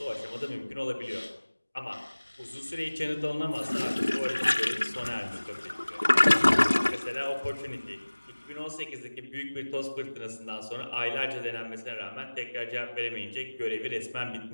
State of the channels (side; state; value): both; inverted; correlation -1.00